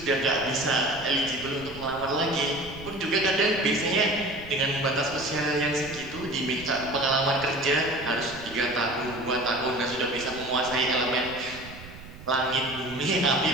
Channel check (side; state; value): right; noise; rumble, 16 dB below the sound